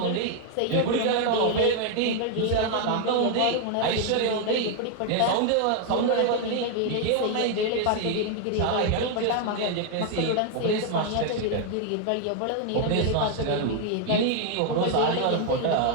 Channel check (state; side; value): different; both; correlation 0.00